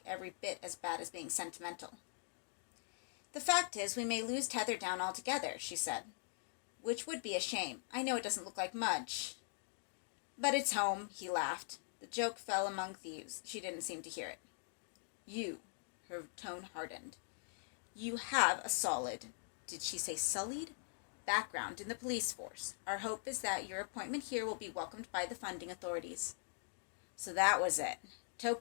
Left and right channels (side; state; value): right; silent; digital silence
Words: every bit as bad as being sentimental. The fact is, we may lose Tether Down altogether, she said. Which would be a shame. I know it doesn't look like much. But it's home, he laughed. The joke fell among thieves. She didn't seem to hear it. You, her tone hardened. You have a solid, did she say sullied? Background in the police force. Our hope is that your appointment here will be welcomed by the funding authorities. So that was it.